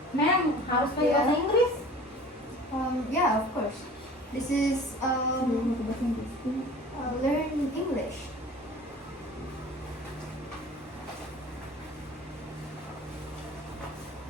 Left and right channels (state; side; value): normal; both; correlation 0.44